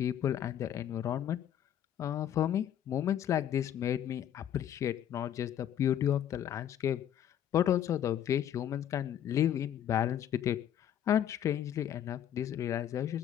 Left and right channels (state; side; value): quieter; right; 10.3 dB